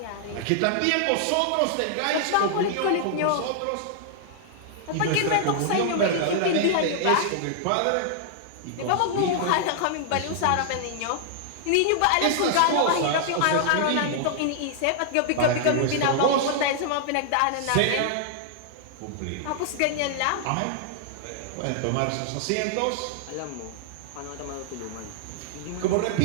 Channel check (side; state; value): both; different; correlation -0.01